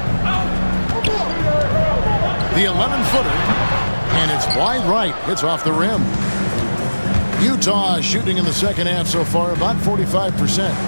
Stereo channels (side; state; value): both; inverted; correlation -1.00